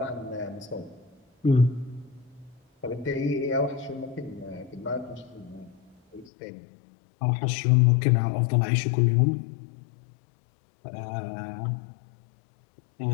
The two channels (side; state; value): right; drops out; at 6.3 s